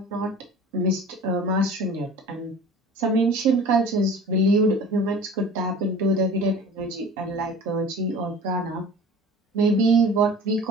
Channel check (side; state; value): both; normal; correlation 0.41